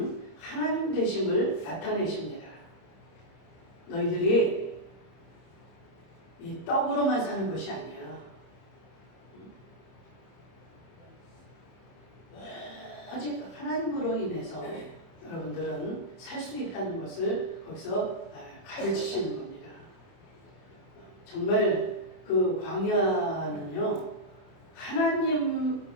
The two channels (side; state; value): right; late; 30 ms